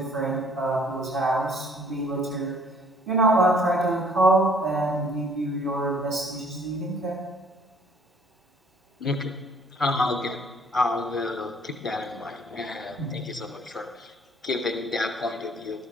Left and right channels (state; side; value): normal; both; correlation 0.58